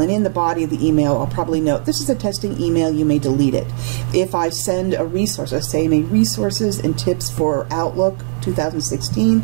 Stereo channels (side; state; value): left; silent; 68 dB below the other